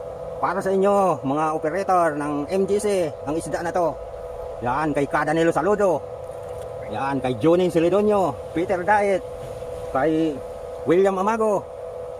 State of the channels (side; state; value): both; identical; correlation 1.00